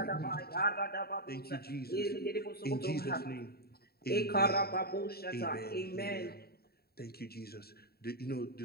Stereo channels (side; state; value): right; late; 0.45 ms